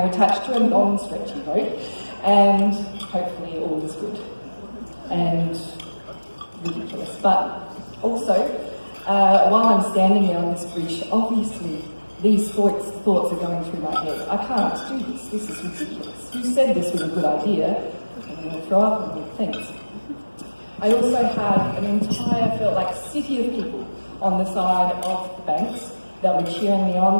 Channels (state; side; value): inverted; both; correlation -1.00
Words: attached to a non-stretchy rope, and hopefully all is good and ridiculous. But also, while I'm standing there on this bridge, obviously these thoughts are going through my head. I can't do this. This is ridiculous. Who said this was a good idea? I'm going to throw up and good things. I also had an entire, felt like, city of people on the side of the banks that were cheering me on,